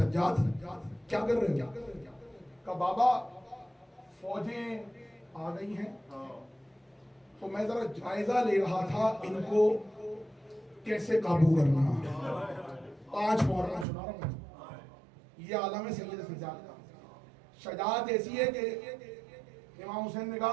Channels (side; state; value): left; drops out; at 13.9 s